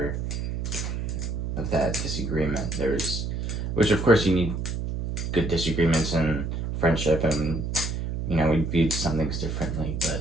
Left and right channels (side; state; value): right; noise; hum, 3 dB below the sound